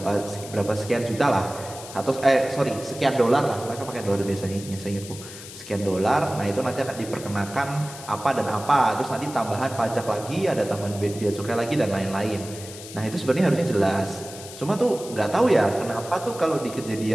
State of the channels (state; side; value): noise; left; hiss, 14 dB below the sound